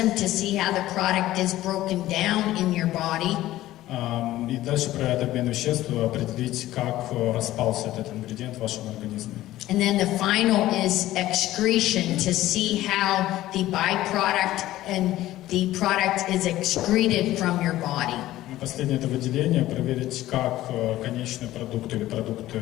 to see how the product is broken down in your body. И дальше проверять обмен веществ, определить, как распался этот ингредиент в вашем организме. And then the final is excretion, to see how the byproduct and the product is excreted from your body. Последнее – это выделение, проверить, как конечный продукт или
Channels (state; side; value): quieter; right; 15.2 dB